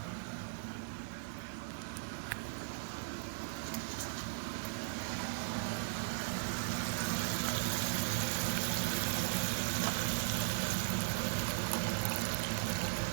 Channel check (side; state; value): left; silent; digital silence